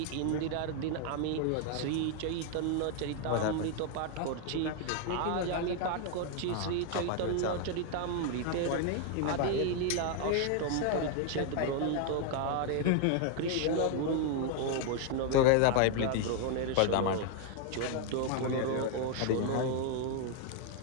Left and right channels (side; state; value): both; different; correlation 0.00